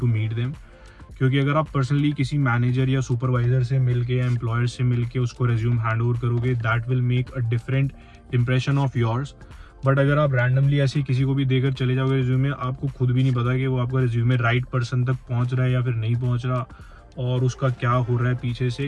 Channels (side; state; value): both; identical; correlation 1.00